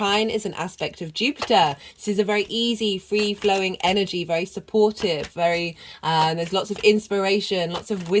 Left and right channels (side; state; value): both; identical; correlation 1.00